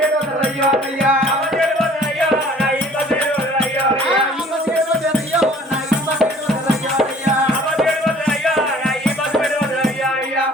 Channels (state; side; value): normal; both; correlation 0.52